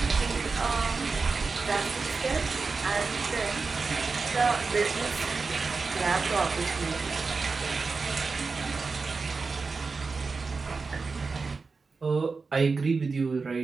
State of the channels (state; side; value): quieter; left; 4.4 dB